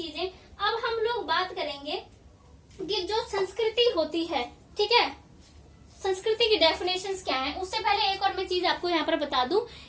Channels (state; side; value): identical; both; correlation 1.00